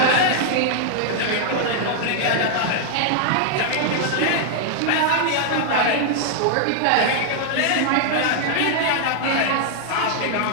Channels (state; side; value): different; both; correlation -0.01